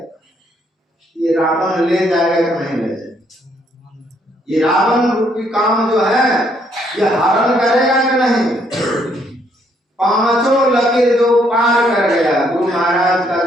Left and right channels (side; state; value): both; normal; correlation 0.70